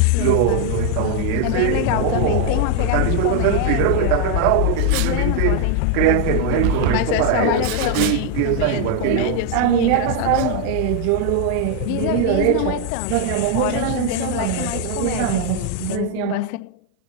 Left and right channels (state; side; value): different; both; correlation 0.00